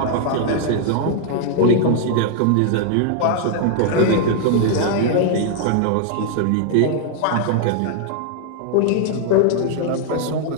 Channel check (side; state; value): both; different; correlation -0.01